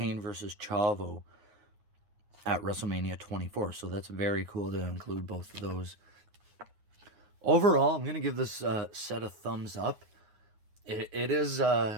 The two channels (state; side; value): late; left; 9.6 ms